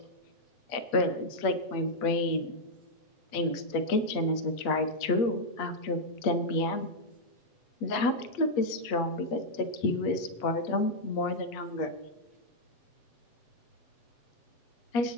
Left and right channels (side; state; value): right; late; 8.4 ms